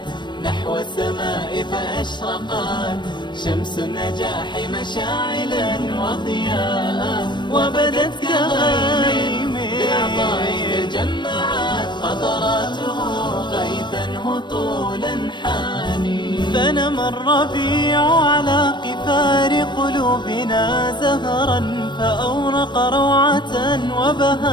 نحو السماء فأشرقت شمس النجاح مشاعلا وضياء، وبدت كغيم بالعطاء تجمعت قطراته غيثا هطولا حاني. فنمى الربيع على قفار قلوبنا زهرا فأورق روعة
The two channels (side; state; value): right; late; 0.22 ms